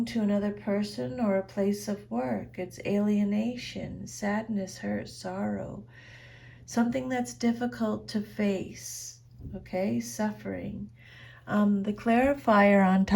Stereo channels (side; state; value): both; identical; correlation 1.00